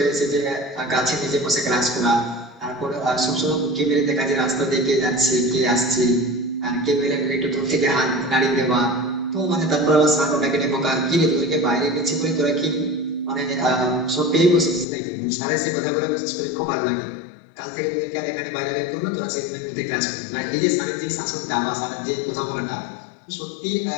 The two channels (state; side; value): drops out; right; at 14.9 s